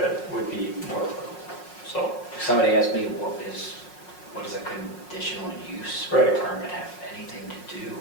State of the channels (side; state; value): right; late; 5.5 ms